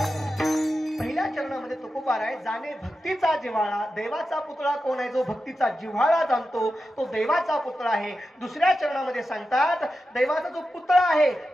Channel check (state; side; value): normal; both; correlation 0.91